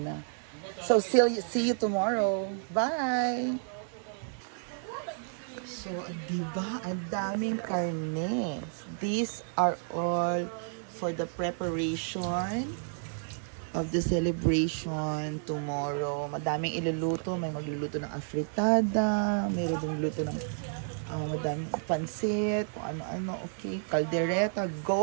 na. So, see you tomorrow. Bye! So, diba? Ang daming karne. These are all for the preparation of the celebration tomorrow. Madaming iluluto. May magluluto ng afritada. Mayroon dong luto ng madaming pansit. Kung ano-ano. Okay. Caldereta.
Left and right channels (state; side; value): silent; left; digital silence